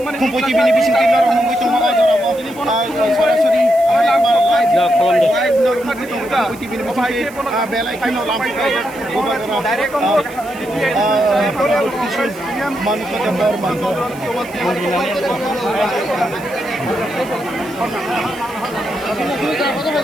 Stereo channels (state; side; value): noise; right; hiss, 21 dB below the sound